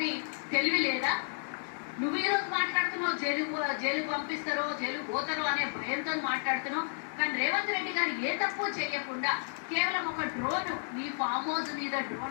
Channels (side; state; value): right; silent; digital silence